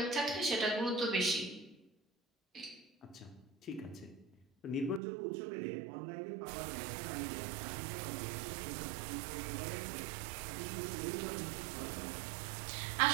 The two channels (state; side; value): drops out; left; at 5.0 s